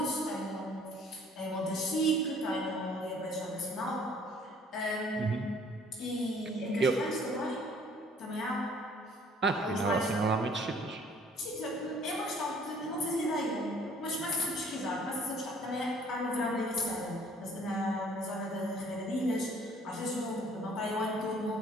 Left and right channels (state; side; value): normal; both; correlation 0.57